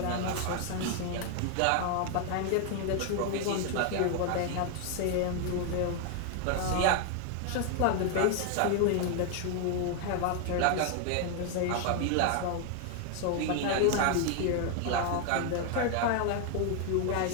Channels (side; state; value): both; different; correlation 0.00